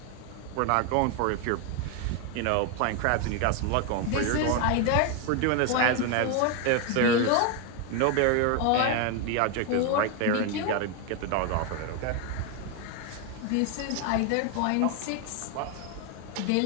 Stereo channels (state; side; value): different; both; correlation 0.01